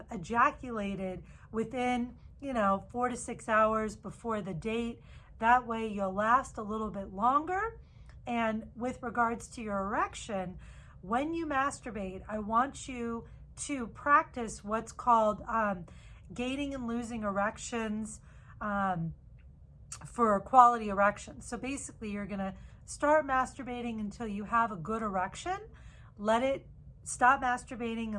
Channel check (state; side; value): identical; both; correlation 1.00